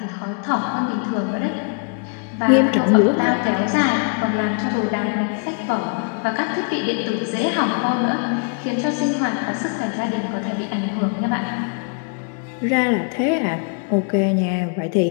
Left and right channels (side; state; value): right; quieter; 39.5 dB